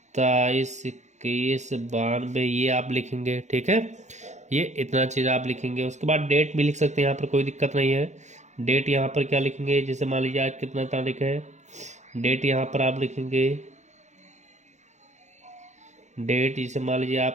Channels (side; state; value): left; late; 0.34 ms